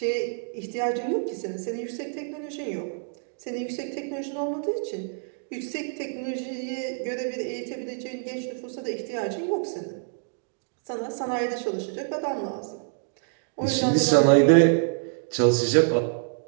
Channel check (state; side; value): silent; left; digital silence